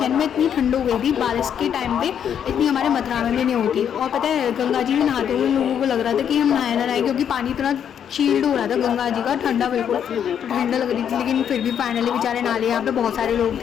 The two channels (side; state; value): right; quieter; 8.6 dB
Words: में, इतनी ठंड हो गई थी बारिश के टाइम पे, इतनी हमारे मथुरा में भी नहीं होती। और पता है गंगा जी में नहाते हुए लोगों को लग रहा था कि हम नहाए ना नहाए, क्योंकि पानी इतना चील्ड हो रहा था गंगा जी का, ठंडा बिल्कुल ठंडा लग रही थी। लेकिन फिर भी फाइनली बेचारे नहा लिए। यहाँ पे बहुत सारे लोग